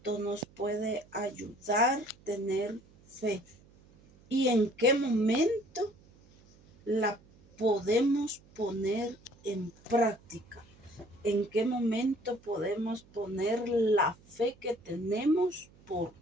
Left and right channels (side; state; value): right; noise; hum, 27 dB below the sound